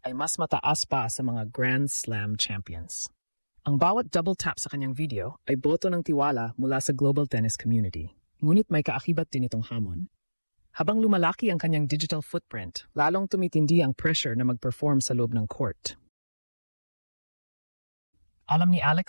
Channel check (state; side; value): inverted; both; correlation -1.00